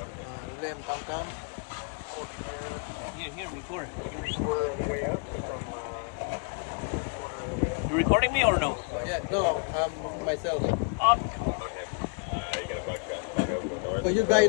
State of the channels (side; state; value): right; quieter; 37.1 dB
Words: Ulem tam-tam. Here, record. You recording me or no? Yeah, no, myself. But you guys